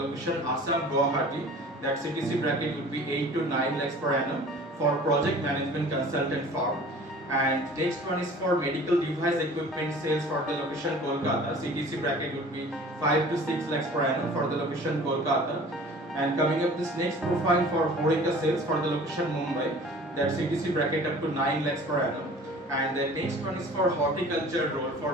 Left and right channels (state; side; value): normal; both; correlation 0.45